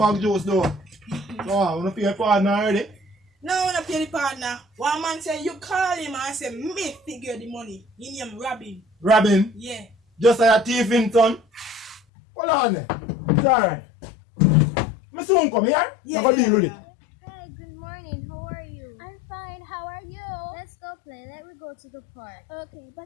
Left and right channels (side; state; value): right; drops out; at 12.0 s